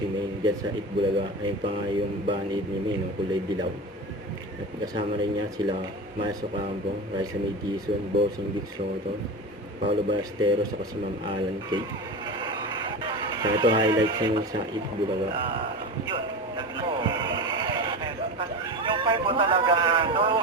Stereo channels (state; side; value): normal; both; correlation 0.26